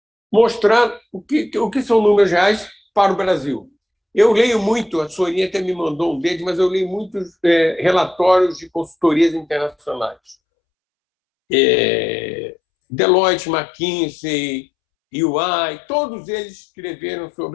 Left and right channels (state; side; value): drops out; right; at 10.4 s